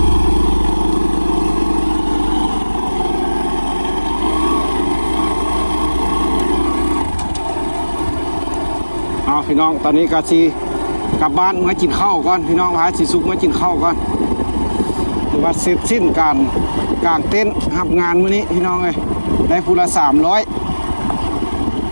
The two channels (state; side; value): inverted; both; correlation -1.00